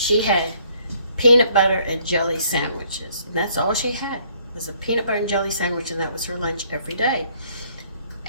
had peanut butter and jelly sandwiches, and that's all she had was a peanut butter and jelly sandwich, and that was her lunch every day.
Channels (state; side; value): inverted; both; correlation -0.64